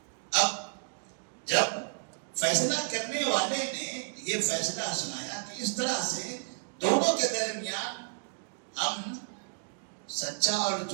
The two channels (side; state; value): left; silent; digital silence